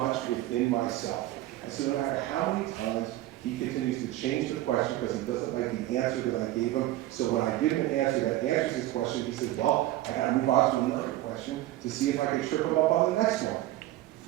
within myself. And so no matter how many times he continues to change the question because he doesn't like the answer that I gave him, so when I give him an answer that answers his question, he says, well, I got to move on to another question to see if I can trip him up on the next one.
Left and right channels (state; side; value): quieter; left; 15.5 dB